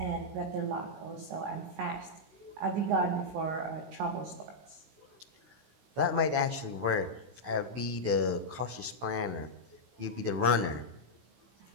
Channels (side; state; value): left; late; 16 ms